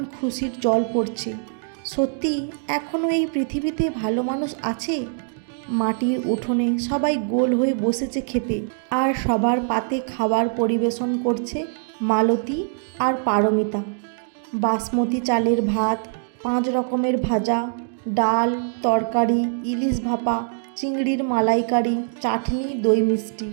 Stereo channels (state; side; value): silent; left; digital silence